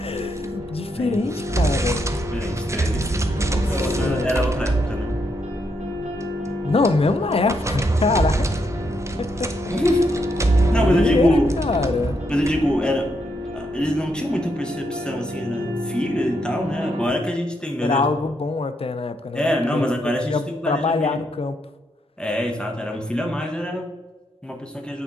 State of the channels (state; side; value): normal; both; correlation 0.79